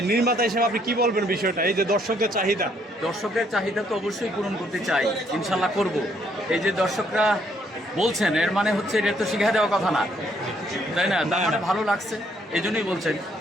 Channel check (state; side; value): normal; both; correlation 0.69